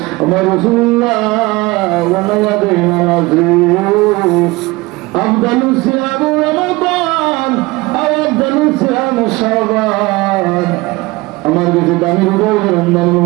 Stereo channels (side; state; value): left; quieter; 21.9 dB